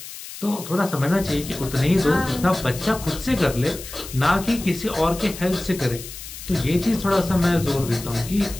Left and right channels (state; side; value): noise; left; hiss, 12 dB below the sound